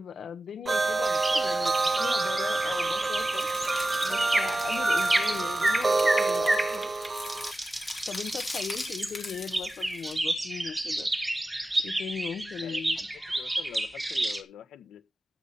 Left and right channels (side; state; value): both; normal; correlation 0.94